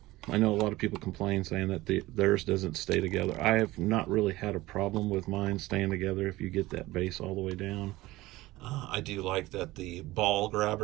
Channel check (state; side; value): quieter; left; 18.4 dB